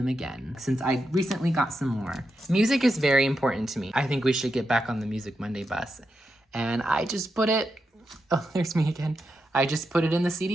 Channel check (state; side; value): normal; both; correlation 0.86